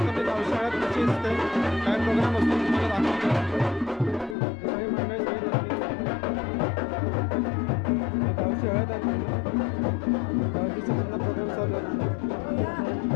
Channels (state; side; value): drops out; right; at 4.4 s